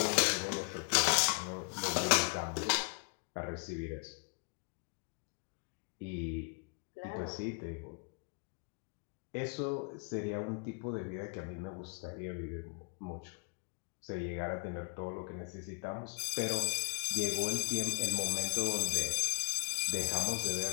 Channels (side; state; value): right; quieter; 37.3 dB